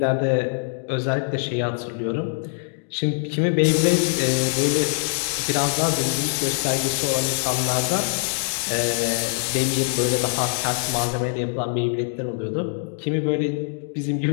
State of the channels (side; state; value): right; silent; digital silence